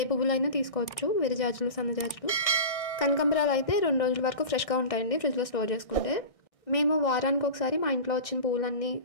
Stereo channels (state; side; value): late; right; 1.6 ms